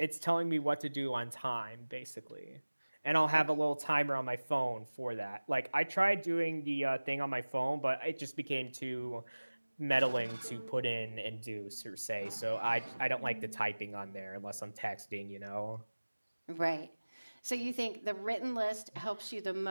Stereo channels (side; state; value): both; inverted; correlation -1.00